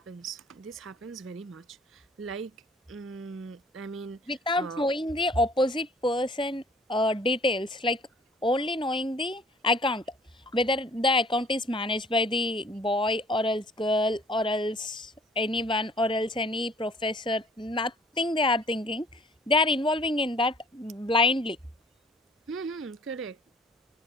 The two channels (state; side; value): normal; both; correlation 0.54